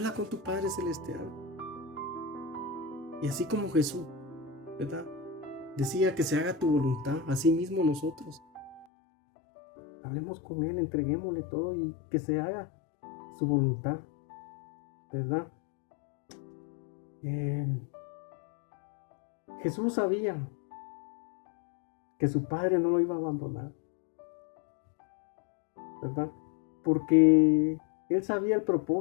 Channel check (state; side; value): drops out; right; at 8.8 s